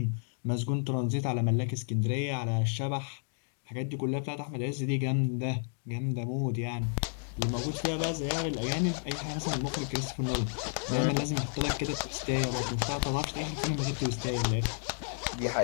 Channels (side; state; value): right; silent; 57 dB below the other